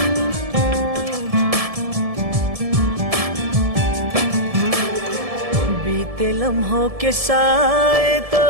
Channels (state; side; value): late; left; 1.7 ms